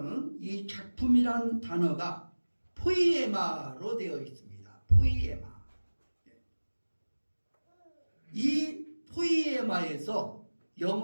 이 작품이란 단어가 포이에마로 되어 있습니다. 포이에마. 이 포이에마에서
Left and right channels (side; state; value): both; inverted; correlation -1.00